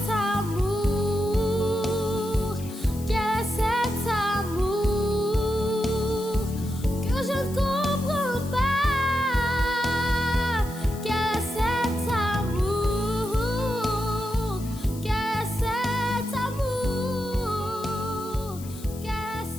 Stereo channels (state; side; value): noise; left; hiss, 18 dB below the sound